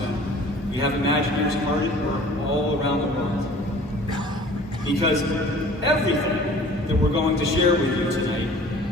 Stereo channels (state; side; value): normal; both; correlation 0.48